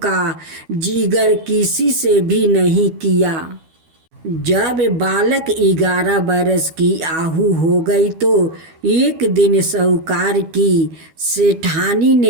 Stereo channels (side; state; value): left; late; 12 ms